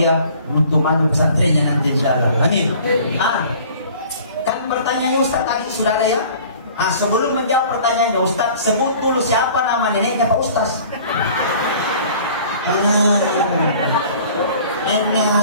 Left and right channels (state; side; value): inverted; both; correlation -0.49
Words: untuk maju pesantrennya nanti insyaallah. Amin. Kan pertanyaannya Ustaz tadi sudah ada ya. Sebelum menjawab pertanyaannya Ustaz, sebut dulu siapa nama neneknya Pak Ustaz. Enak